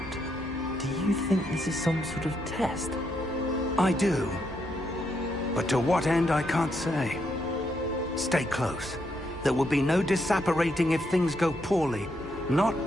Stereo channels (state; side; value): normal; both; correlation 0.78